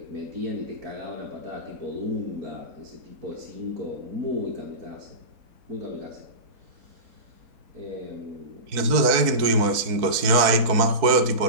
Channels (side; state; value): left; late; 4.6 ms